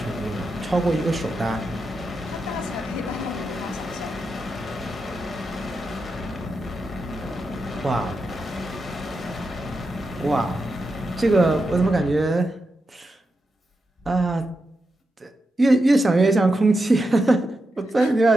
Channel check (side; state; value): both; normal; correlation 0.87